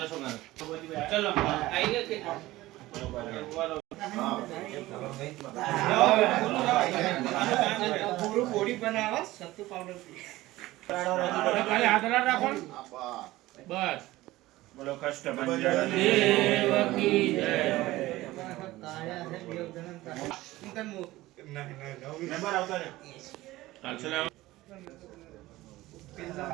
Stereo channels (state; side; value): quieter; left; 17.7 dB